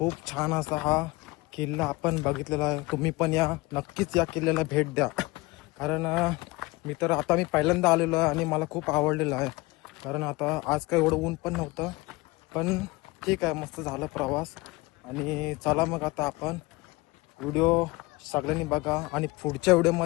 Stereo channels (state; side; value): quieter; right; 22.8 dB